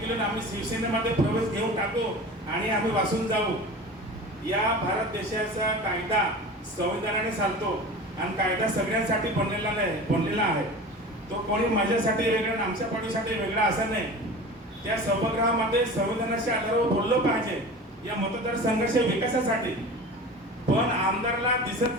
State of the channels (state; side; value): normal; both; correlation 0.35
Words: आम्ही शिवसेनेमध्ये प्रवेश घेऊन टाकू आणि आम्ही वाचून जाऊ. या भारत देशाचा कायदा संविधानाने चालतो आणि कायदा सगळ्यांसाठी बनलेला आहे. तो कोणी माझ्यासाठी वेगळा आणि आमच्या पाठीसाठी वेगळा असा नाही. त्या सभागृहामध्ये संविधानाच्या आधारावर बोललं पाहिजे या मतदारसंघाच्या विकासासाठी. पण आमदारला दिसत